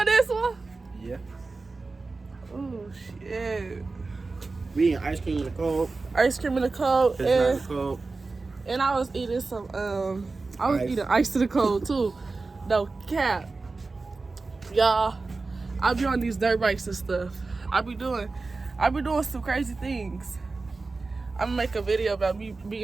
this one? Yeah. Oh shit. We eating ice cream in the cold. Ice cream in the cold. It's not in the cold. And I was eating some eating ice to the cold too. No cap. Y'all, I be on these dirt bikes and stuff. I be doing some crazy things. I'm gonna make a video about me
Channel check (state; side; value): quieter; left; 3.8 dB